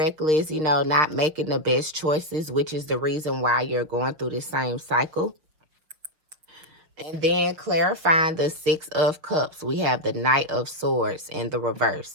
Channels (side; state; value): left; late; 6.6 ms